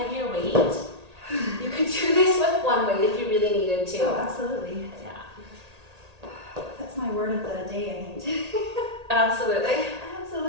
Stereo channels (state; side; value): late; left; 1.8 ms